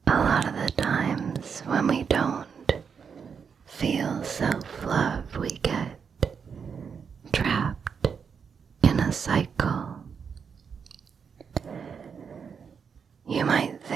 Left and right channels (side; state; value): left; quieter; 6.5 dB